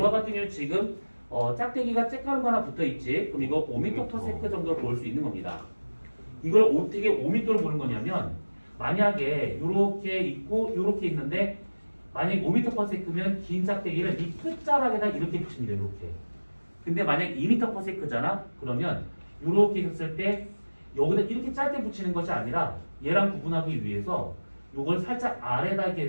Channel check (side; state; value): both; inverted; correlation -1.00